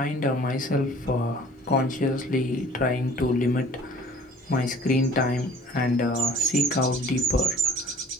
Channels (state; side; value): normal; both; correlation 0.50